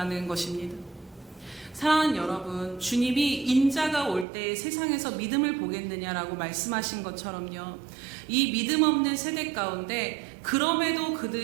것입니다. 사랑하는 여러분, 주님이 인자가 올 때 세상에서 믿음을 보겠느냐라고 말씀하신 것처럼요, 이 믿음 없는 세대 가운데 그럼에도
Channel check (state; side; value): drops out; left; at 4.2 s